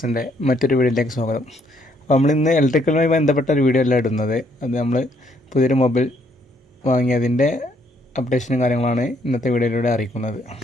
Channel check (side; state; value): both; normal; correlation 0.69